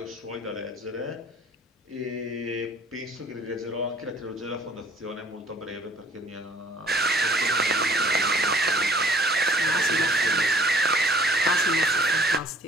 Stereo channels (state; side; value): normal; both; correlation 0.57